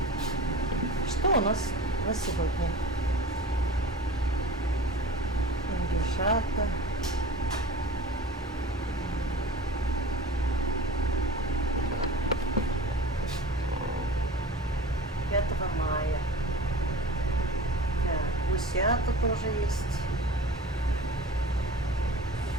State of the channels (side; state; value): both; normal; correlation 0.39